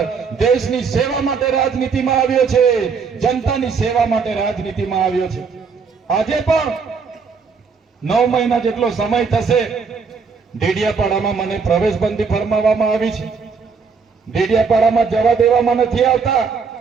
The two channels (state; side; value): quieter; left; 5.3 dB